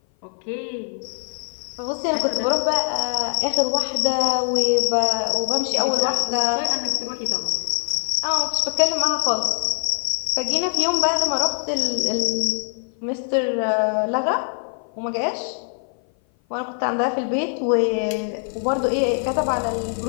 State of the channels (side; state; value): right; silent; 56 dB below the other